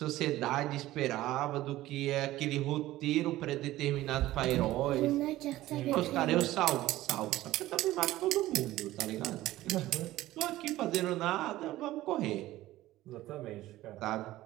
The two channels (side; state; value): left; quieter; 16.0 dB